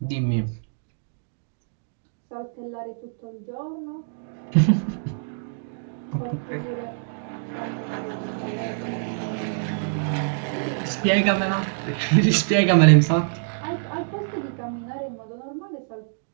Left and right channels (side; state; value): left; silent; digital silence